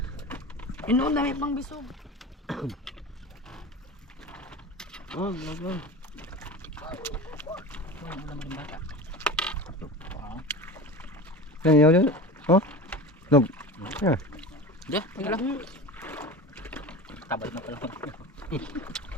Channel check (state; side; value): normal; both; correlation 0.31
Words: Inoon dami pang bisog. Oh, vlog. Yan, yan. Oh, nog. Yeah. Diyan, wala. Tabal na pala.